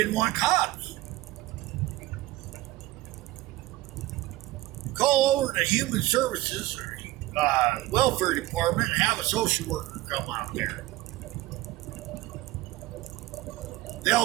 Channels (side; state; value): left; quieter; 17.3 dB